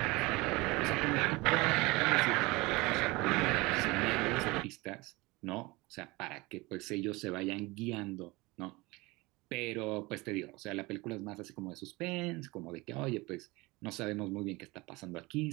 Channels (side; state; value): left; quieter; 23.1 dB